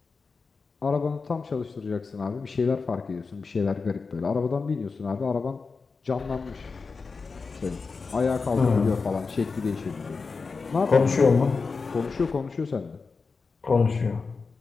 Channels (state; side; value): quieter; right; 4.6 dB